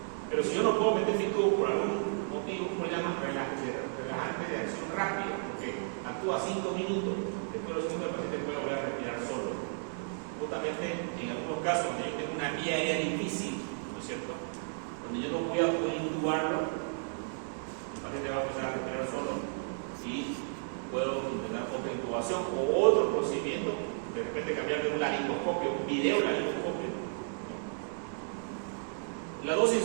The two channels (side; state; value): left; silent; 56 dB below the other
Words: Pero si yo no puedo meter mi tubo por algún motivo, lo llaman relajante de acción rápida, porque actúa 5 minutos. Después de los segundos, el paciente puede volver a respirar solo. Justamente en algunos casos, cuando yo tengo una vía aérea difícil, ¿no es cierto? Cuando yo no voy a poder intubarlo, el paciente va a empezar a respirar solo y puedo tener otra intubación o otro procedimiento, de repente cambiar de un laringoscopio, un video laringoscopio. La dosis